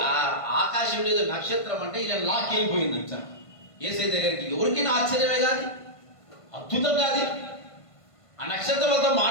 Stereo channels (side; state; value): right; late; 1.5 ms